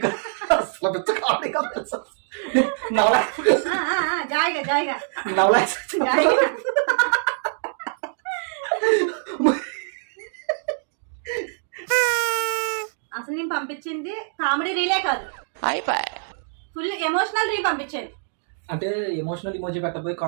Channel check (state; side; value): silent; left; digital silence